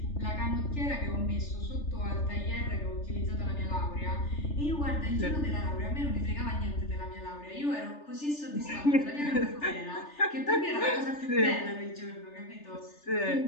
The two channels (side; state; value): right; late; 3.4 ms